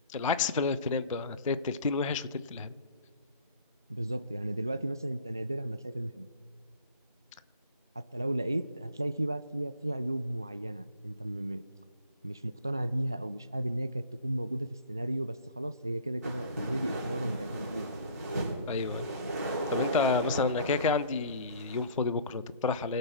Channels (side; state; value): both; inverted; correlation -0.49